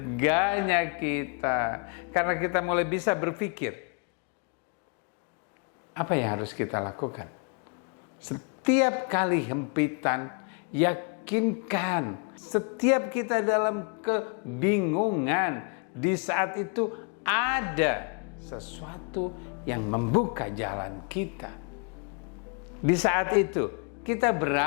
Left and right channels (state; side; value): quieter; right; 36.0 dB